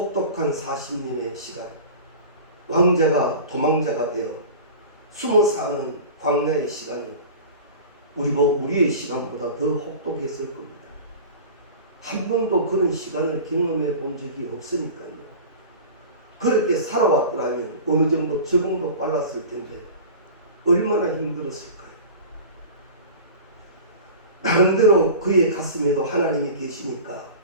40년의 시간, 왕자가 도망자가 되어 숨어 사는 광야의 시간은 우리의 시간보다 더 혹독했을 겁니다. 한 번도 그런 시간을 경험해 본 적이 없으니까요. 그렇게 살아왔더라면 어느 정도 적응도 빨랐을 텐데 얼마나 힘들었을까요? 나름대로 그의 가슴에도 하나님이 계시니까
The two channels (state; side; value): inverted; both; correlation -0.36